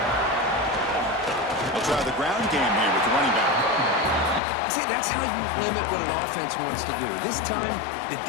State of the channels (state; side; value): drops out; right; at 4.4 s